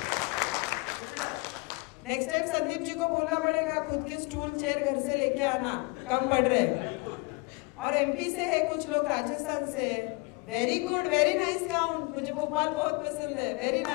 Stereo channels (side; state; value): right; quieter; 28.6 dB